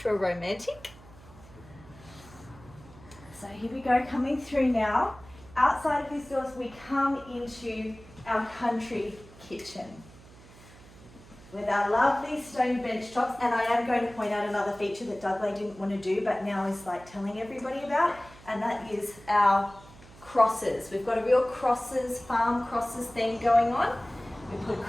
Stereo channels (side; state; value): right; noise; hum, 22 dB below the sound